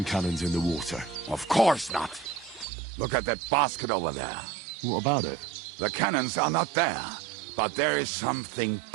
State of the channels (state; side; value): drops out; left; at 2.7 s